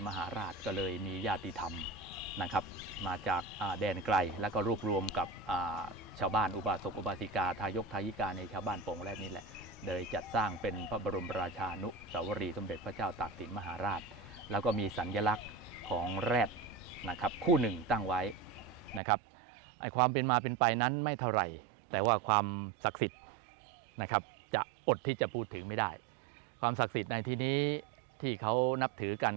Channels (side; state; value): left; drops out; at 19.0 s